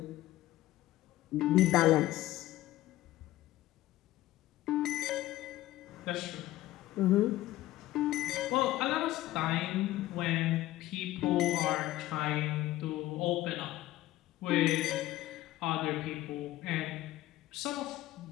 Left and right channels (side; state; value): right; quieter; 15.7 dB